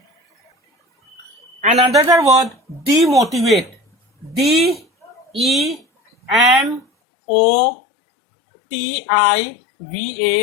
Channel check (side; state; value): right; drops out; at 6.9 s